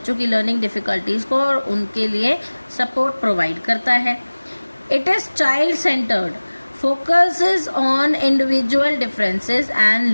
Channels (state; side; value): inverted; both; correlation -1.00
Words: की लर्निंग डिफिकल्टीज को और उनके लिए सपोर्ट प्रोवाइड करता है। It is child centred, focuses on individual differences and